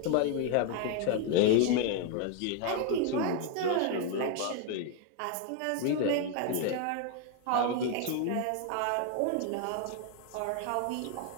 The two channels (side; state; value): both; different; correlation 0.00